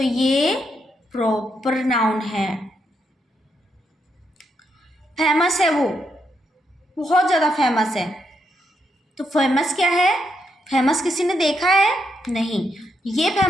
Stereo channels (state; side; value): normal; both; correlation 0.80